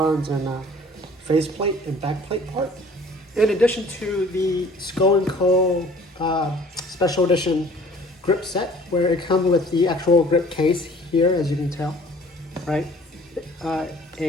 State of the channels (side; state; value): both; normal; correlation 0.51